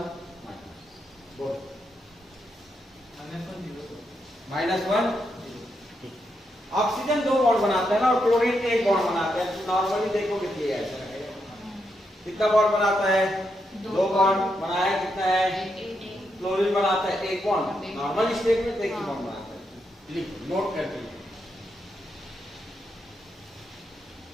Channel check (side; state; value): both; normal; correlation 0.82